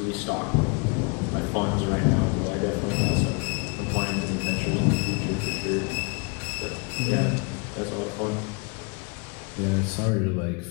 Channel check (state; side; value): quieter; right; 32.4 dB